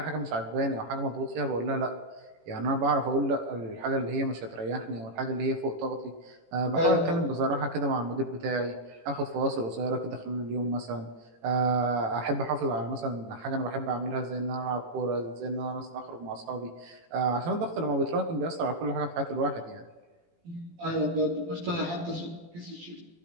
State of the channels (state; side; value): late; left; 18 ms